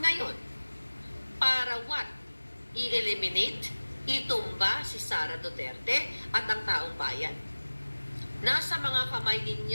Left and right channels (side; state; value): both; inverted; correlation -1.00